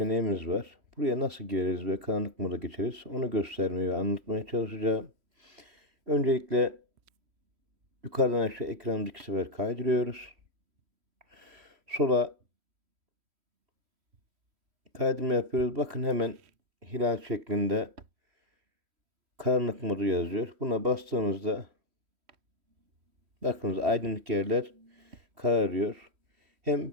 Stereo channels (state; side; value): late; left; 3.1 ms